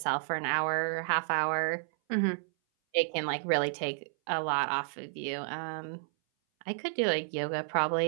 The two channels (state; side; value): silent; left; 57 dB below the other